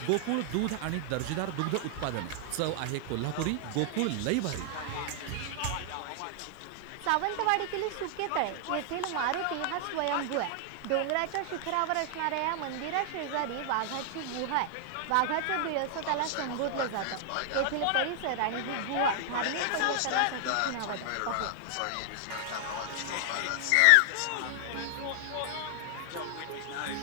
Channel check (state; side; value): different; both; correlation 0.00